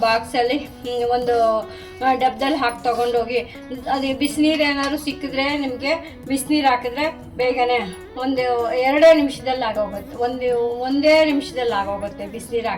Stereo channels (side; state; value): both; identical; correlation 1.00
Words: ಬಾಕ್ಸಲ್ಲಿ ಒಂದು ಡಬ್ಬದಲ್ಲಿ ಹಾಕಿ ತೊಗೊಂಡೋಗಿ, ಅದು ಬಿಸಿನೀರು ಏನಾದ್ರು ಸಿಕ್ಕಿದ್ರೆ ನಿಮಗೆ ಬಿಸಿನೀರು ಹಾಕಿದ್ರೆ ಬೇಗನೆ ಒಂದು 2 ನಿಮಿಷದಲ್ಲಿ ಆಗೋಗುತ್ತೆ. ಒಂದೇ ನಿಮಿಷದಲ್ಲಿ ಆಗೋಗುತ್ತೆ. ಬಿಸಿನೀರು